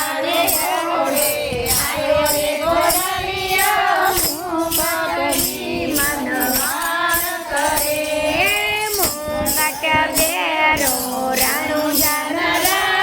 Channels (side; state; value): both; identical; correlation 1.00